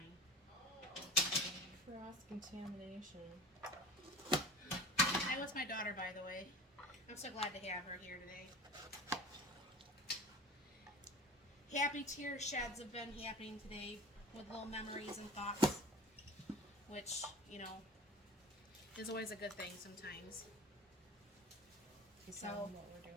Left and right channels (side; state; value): both; normal; correlation 0.37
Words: Cross-contamination. That was my daughter, by the way. I'm so glad to have her here today. Happy tear sheds have been happening today with little memories and thoughts, which, you know, is always a good thing sometimes. You tell them what we're